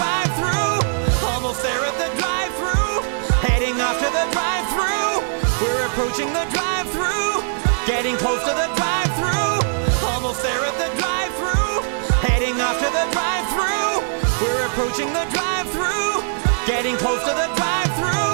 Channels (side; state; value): left; silent; digital silence